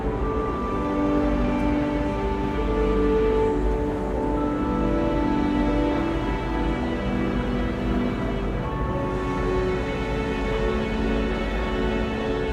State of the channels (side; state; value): both; identical; correlation 1.00